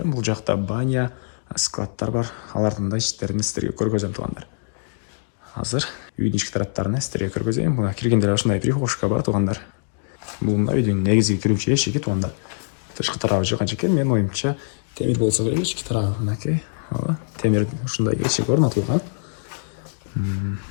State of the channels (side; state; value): right; silent; digital silence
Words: Бул жакта баня, складтар бар. Алардын да ичтерин сиздерге көргөзөм туугандар. Азыр үйдүн ички тараптарына сиздерге көргөзөйүн. Мына киргенде ушундай прихожка бар туугандар. Бул мына үйдүн негизги кирүүчү эшиги туугандар. Тышкы тарабы жыгач экен. Менин оюмча темир болсо керек, ички тарабы мынакей. Темир ушундай эшик орнотулган.